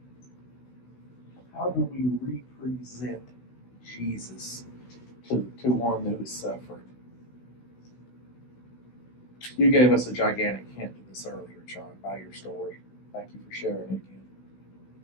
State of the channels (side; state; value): right; late; 16 ms